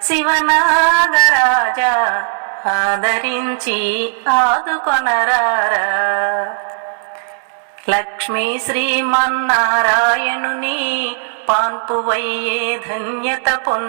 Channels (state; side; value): silent; left; digital silence